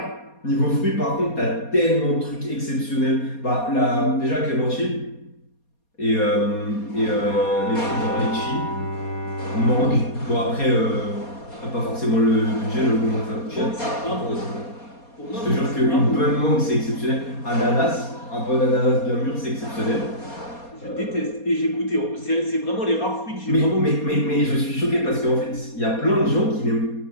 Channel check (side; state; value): right; late; 4.2 ms